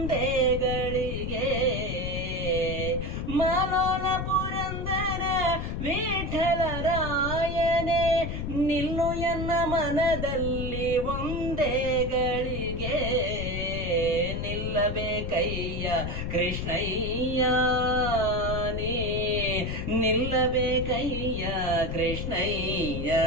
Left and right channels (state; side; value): noise; left; rumble, 4 dB below the sound